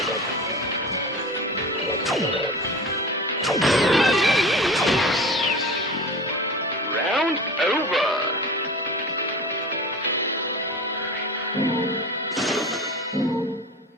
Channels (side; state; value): both; normal; correlation 0.33